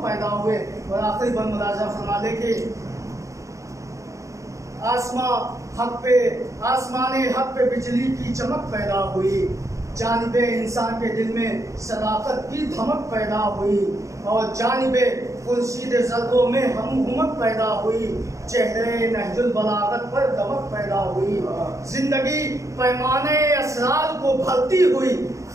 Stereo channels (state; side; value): late; left; 0.15 ms